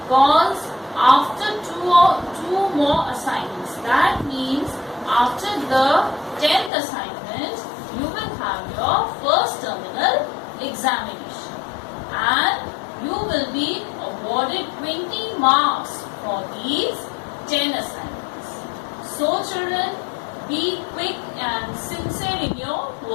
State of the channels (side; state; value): right; drops out; at 6.7 s